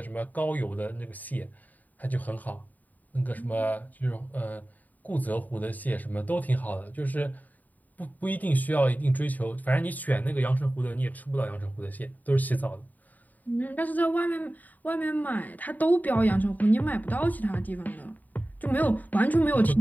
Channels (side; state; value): right; late; 0.081 ms